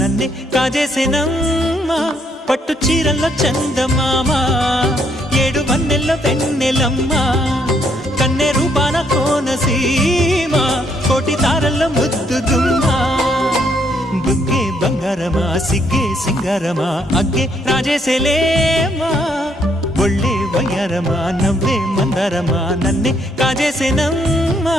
కాజేసేనమ్మా పట్టు చీరల్లో చందమామా ఏడు వన్నెల్లో వెన్నెలమ్మా కన్నె రూపాన కోనసీమ కోటి తారల్లో ముద్దుదుమ్మా బుగ్గే బంగారమా సిగ్గే సింగారమా అగ్గే రాజేసేలేమా ఒళ్ళే వయ్యారమా నవ్వే మందారమా నన్నే కాజేసేనమ్మా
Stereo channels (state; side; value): normal; both; correlation 0.71